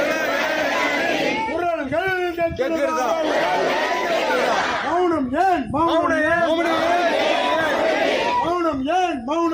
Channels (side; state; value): right; noise; hum, 27 dB below the sound